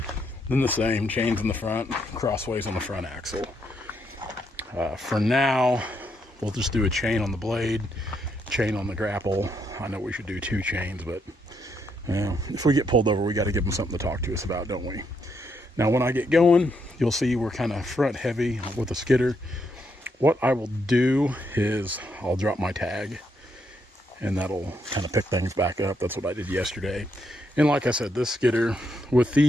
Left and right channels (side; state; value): both; normal; correlation 0.77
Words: then the same, chains in the front, crossways on the front axle. For now, we'll just do a chain on the blade, chain on the grapple. I know we should do 2 chains, but if we get pulled over, we got to give them something to talk to us about, don't we? Now, when I get going, you'll see we're kind of front heavy with the skidder. What I will do is I'll drop my tag, and that'll kind of pick things back up. That's what I did yesterday. And like I said, this skidder, with